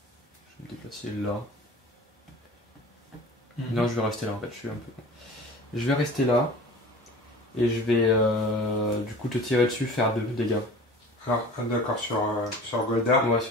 déplacer là. Non, je vais rester là en fait. Je suis un peu. Je vais rester là. Et je vais du coup te tirer dessus, faire 2 dégâts. Alors, d'accord, sur Goldar. Ouais,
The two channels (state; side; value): normal; both; correlation 0.40